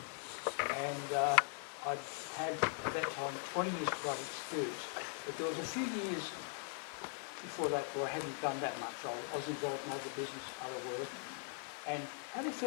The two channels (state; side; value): silent; right; 51 dB below the other